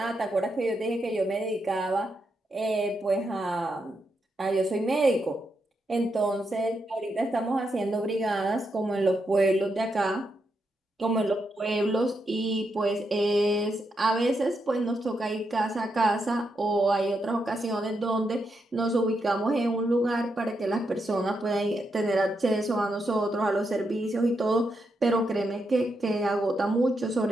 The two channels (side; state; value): both; normal; correlation 0.83